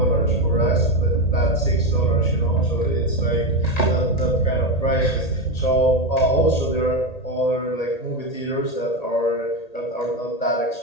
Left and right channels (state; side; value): late; right; 1.8 ms